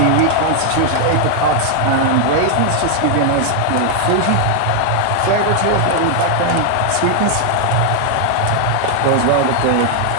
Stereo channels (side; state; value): both; different; correlation 0.00